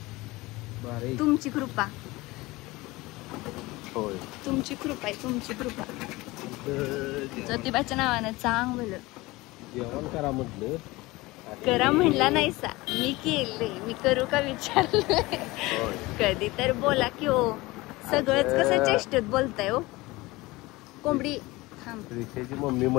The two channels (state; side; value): quieter; right; 21.0 dB